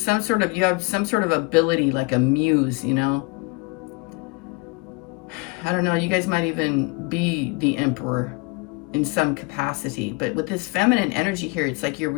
some sort of ability, like a muse, you know. I don't know, you guys might even be the emperor in some capacity, but with this feminine energy here, it's like you're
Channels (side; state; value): right; quieter; 27.7 dB